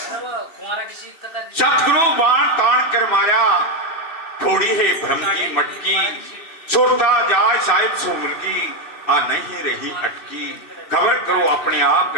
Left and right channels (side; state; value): right; late; 2.6 ms